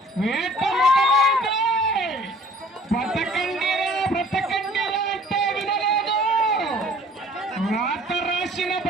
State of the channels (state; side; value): normal; both; correlation 0.53